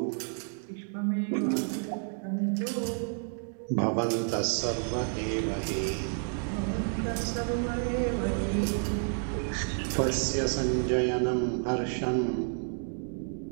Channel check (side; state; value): left; silent; 58 dB below the other